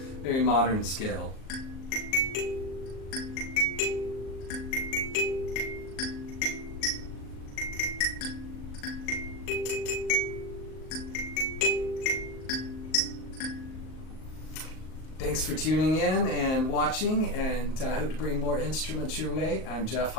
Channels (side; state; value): right; late; 38 ms